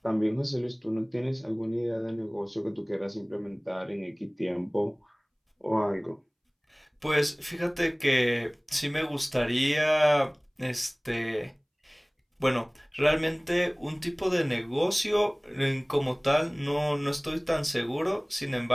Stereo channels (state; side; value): identical; both; correlation 1.00